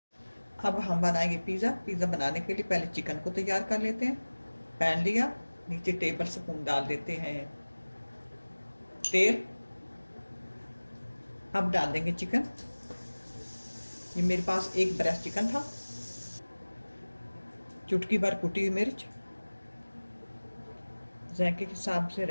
अब हम बनाएंगे पिज़्ज़ा बनाने के लिए पहले चिकन को तैयार कर लेते हैं। पैन लिया, नीचे टेबल स्पून डाल देते हैं तेल। अब डाल देंगे चिकन। ये मेरे पास 1 ब्रेस्ट चिकन था, चुटकी भर कुटी हुई मिर्च, जायके के हिसाब से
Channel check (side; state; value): both; inverted; correlation -1.00